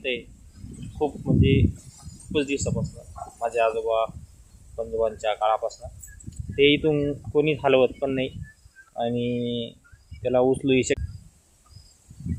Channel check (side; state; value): both; identical; correlation 1.00